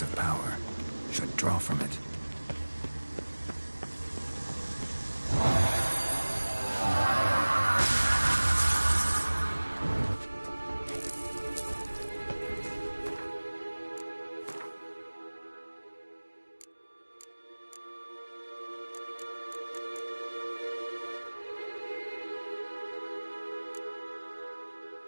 of power. Should draw from it.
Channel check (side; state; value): both; inverted; correlation -1.00